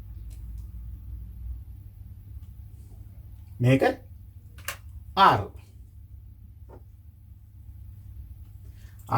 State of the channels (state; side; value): identical; both; correlation 1.00